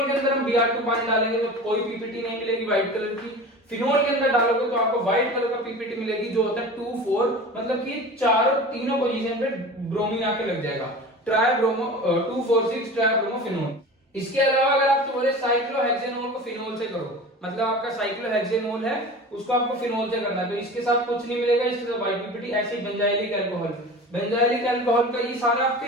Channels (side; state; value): both; normal; correlation 0.35